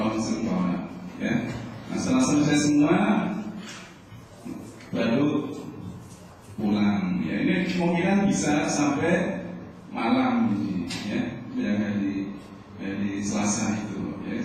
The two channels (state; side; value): identical; both; correlation 1.00